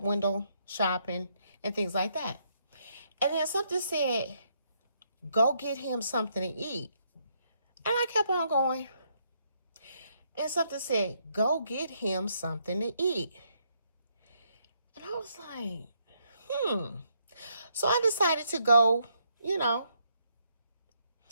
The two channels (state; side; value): inverted; both; correlation -0.74